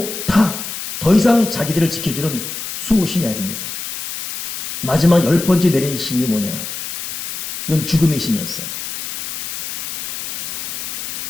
다 더 이상 자기들을 지켜주는 수호신이 아닙니다. 마지막 열 번째 내린 신이 뭐냐? 이건 죽음의 신이었어요.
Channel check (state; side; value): noise; left; hiss, 6 dB below the sound